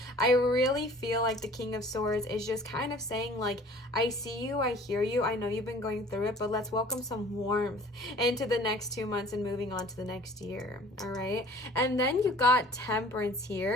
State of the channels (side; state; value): both; normal; correlation 0.50